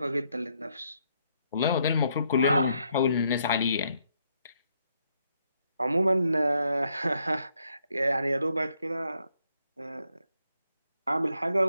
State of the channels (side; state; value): both; inverted; correlation -0.75